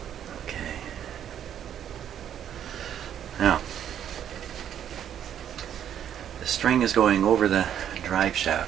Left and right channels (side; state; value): left; quieter; 9.8 dB